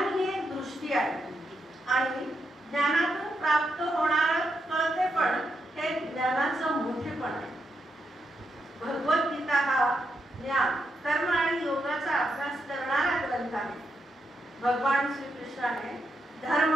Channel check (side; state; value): both; normal; correlation 0.83